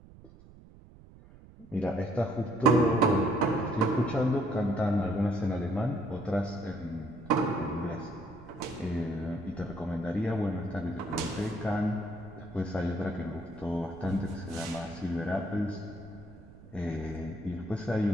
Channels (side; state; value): right; noise; rumble, 21 dB below the sound